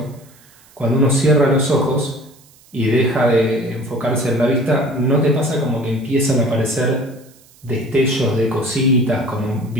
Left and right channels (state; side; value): noise; right; hiss, 28 dB below the sound